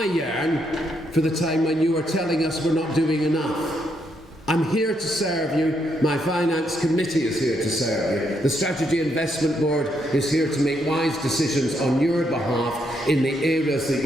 yearn for the time when you are telling us we're not doing enough. I'm here to serve you. My finance committee is here to serve you. The Strategy Investment Board is here to make wise decisions on your behalf in the areas that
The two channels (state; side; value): normal; both; correlation 0.77